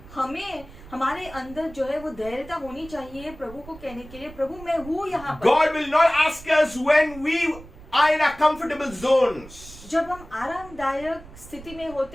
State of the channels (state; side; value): noise; right; rumble, 18 dB below the sound